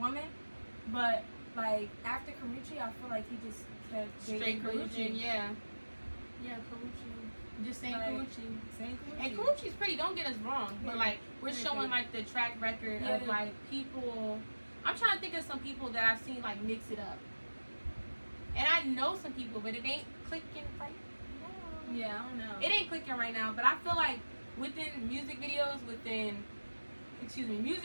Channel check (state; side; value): inverted; both; correlation -1.00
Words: but like after Karuchi, I feel like he just kept straight Karuchi. Yeah, Karuchi. Just saying Karuchi. And Karuchi's pretty. Don't get us wrong, but like we're showing like the track record of like people. I'm trying to think of some people that I've seen like mix it up, and I know some people, but it ain't clicking right now. Yeah, I don't know. It ain't clicking right now, but I feel like within music videos, within